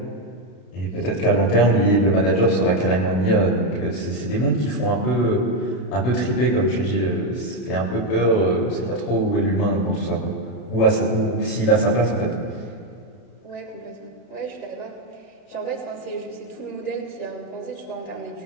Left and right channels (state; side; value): late; right; 32 ms